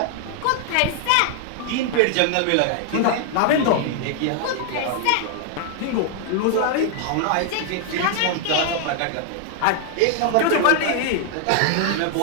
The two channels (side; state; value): both; different; correlation 0.00